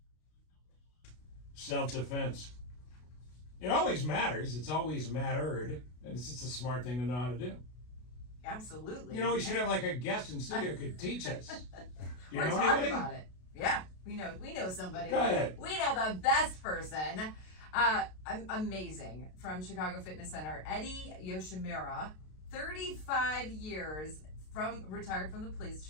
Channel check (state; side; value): late; right; 32 ms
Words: Self-defense. It always matters. It's always mattered. And it's just a smart thing to know how to do. Absolutely. You know, we should have like a guest in studio who could teach us. Do you We're know talking anybody? about it. Yeah, we know somebody. Go ahead. We know the best person. Amazing. From Chicago Fitness Center, Eddie Yoshimura, 35 years retired from the